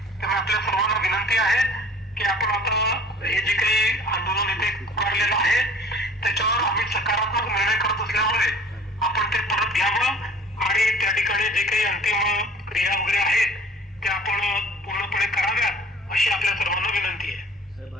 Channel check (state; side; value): normal; both; correlation 0.49